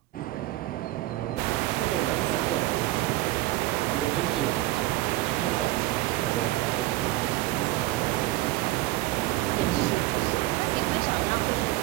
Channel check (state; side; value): quieter; left; 17.6 dB